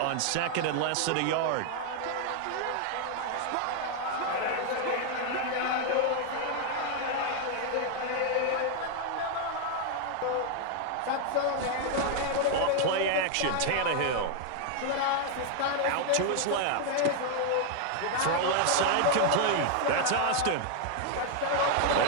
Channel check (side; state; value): both; different; correlation 0.00